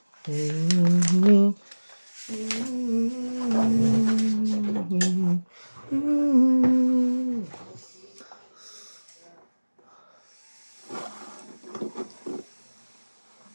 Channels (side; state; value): both; inverted; correlation -1.00